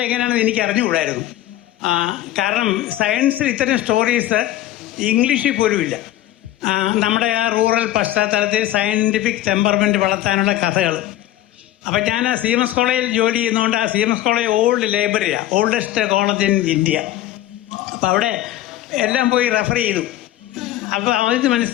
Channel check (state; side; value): quieter; right; 13.8 dB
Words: എങ്ങനെയാണെന്ന് എനിക്ക് അറിഞ്ഞുകൂടായിരുന്നു. കാരണം സയൻസിൽ ഇത്തരം സ്റ്റോറീസ് ഇംഗ്ലീഷിൽ പോലും ഇല്ല. നമ്മുടെ ആ റൂറൽ പശ്ചാത്തലത്തിൽ സയൻറ്റിഫിക് ടെമ്പർമെൻറ്റ് വളർത്താനുള്ള കഥകൾ. അപ്പം ഞാൻ CMS കോളേജിൽ ജോലി ചെയ്യുന്നതുകൊണ്ട് CMS കോളേജ് ഓൾഡ് ലൈബ്രറിയാണ്, ഓൾഡസ്റ്റ് കോളേജ് ഇൻ ഇന്ത്യ. അപ്പം അവിടെ എല്ലാം പോയി റെഫർ ചെയ്തു. അപ്പോൾ അവർക്ക്